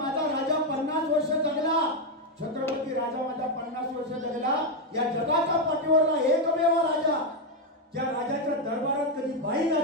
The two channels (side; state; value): both; normal; correlation 0.04